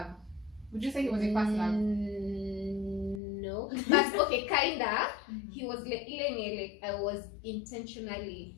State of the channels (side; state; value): right; drops out; at 3.2 s